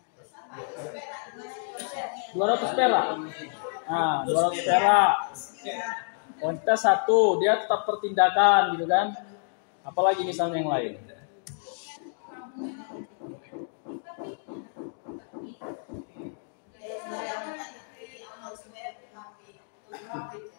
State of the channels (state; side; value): silent; right; 58 dB below the other